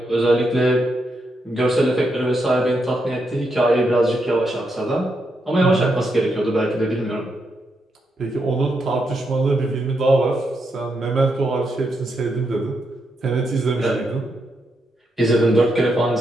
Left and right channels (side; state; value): both; normal; correlation 0.81